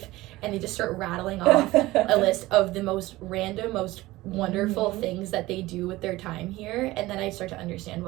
And they just start rattling off a list of the most random, most wonderful things that they do with their time here. And then I start to understand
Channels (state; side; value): quieter; left; 18.5 dB